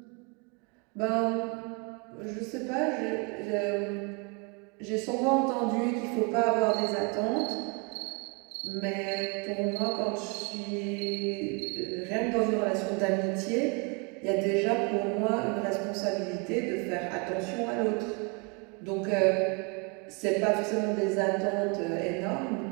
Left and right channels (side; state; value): left; quieter; 31.6 dB